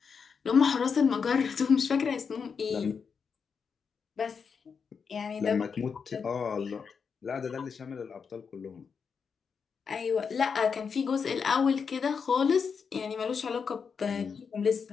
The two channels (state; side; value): quieter; right; 6.0 dB